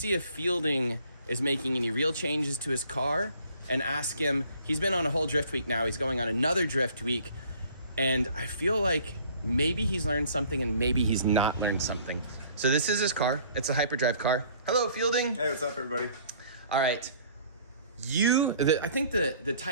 if Fielding is making any real changes to his car and ask him. He's been on a whole Driftweek now. He's going on another Driftweek. And I feel like maybe he's learned something and maybe he's not learned something. So this is his car. It's a hyperdrive car. Hello, Fielding. Hey, what's up, everybody? All right. I think the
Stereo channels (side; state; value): both; inverted; correlation -0.56